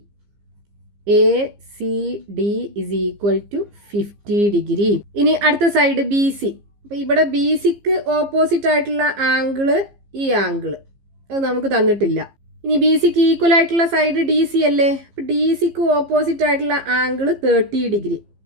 A C D is equal to 50 degree. ഇനി അടുത്ത side B C. അപ്പോൾ ഇവിടെ B സിക്ക് ഓപ്പോസിറ്റ് ആയിട്ടുള്ള ആംഗിള് ഈ ആംഗിള് അത് നമുക്ക് തന്നിട്ടില്ല. ഇനി ബി സിക്ക് ഈക്വൽ ആയിട്ടുള്ള സൈഡ് ഡി സി അല്ലേ. അപ്പോൾ ഡി സിക്ക് ഓപ്പോസിറ്റ് ആയിട്ടുള്ള ആംഗിള് 30 ഡിഗ്രി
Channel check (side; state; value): left; late; 15 ms